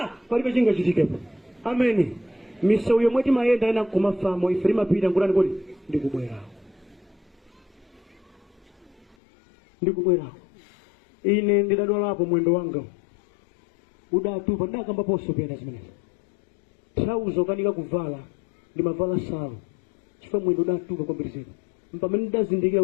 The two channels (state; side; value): drops out; right; at 9.2 s